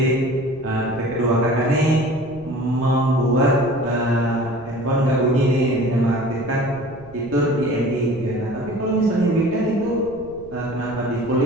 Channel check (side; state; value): right; noise; rumble, 20 dB below the sound